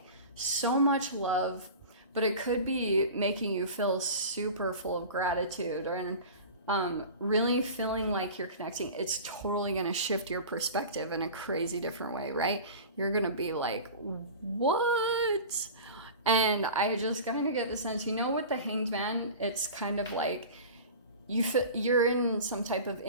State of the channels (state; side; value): inverted; both; correlation -0.35